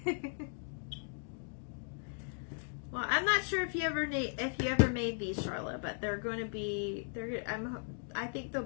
Well, I'm not sure if you ever made these, Charlotte, but they're going to be. I think they'll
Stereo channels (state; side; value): silent; right; 53 dB below the other